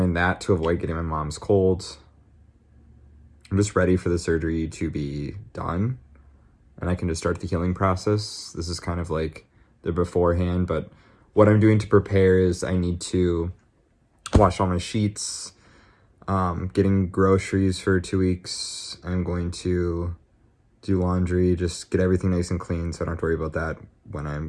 that to avoid getting my mom's colds. I'm just ready for the surgery to be done, and I can just start the healing process. This is kind of like the beforehand, but what I'm doing to prepare is I need to wash all my sheets, getting groceries for 2 weeks. I'm going to do laundry, just get everything nice and clean so I don't have to worry about that when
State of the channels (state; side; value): identical; both; correlation 1.00